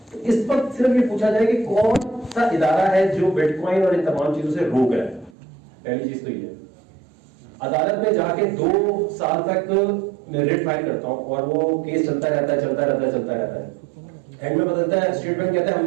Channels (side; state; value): left; drops out; at 5.4 s